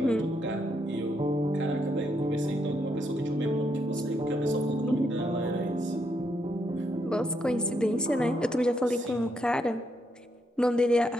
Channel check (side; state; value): both; normal; correlation 0.77